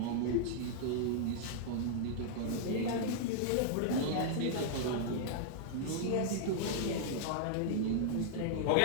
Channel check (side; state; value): both; different; correlation -0.01